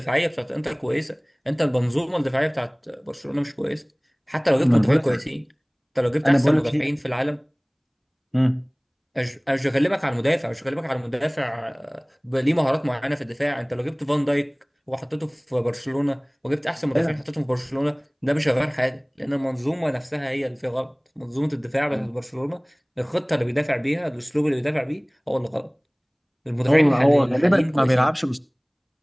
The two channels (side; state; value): both; identical; correlation 1.00